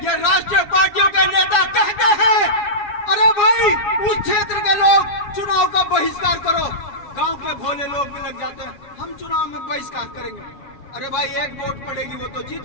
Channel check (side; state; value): right; late; 7.2 ms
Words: ये राष्ट्रीय पार्टियों के नेता कहते हैं, अरे भाई उस क्षेत्र के लोग चुनाव का बहिष्कार करो, गांव के भोले लोग भी लग जाते हैं, हम चुनाव में बहिष्कार करेंगे। अरे भाई, एक वोट पड़ेगी वो तो जीत